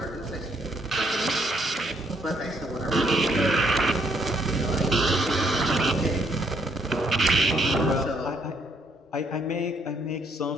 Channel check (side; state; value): both; normal; correlation 0.69